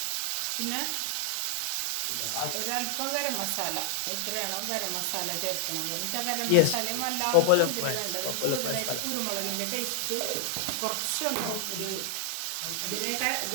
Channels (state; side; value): different; both; correlation 0.00